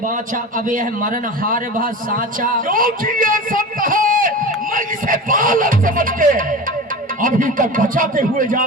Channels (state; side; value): normal; both; correlation 0.31